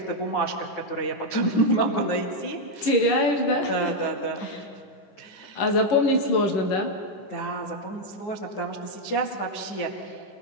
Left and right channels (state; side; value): late; right; 11 ms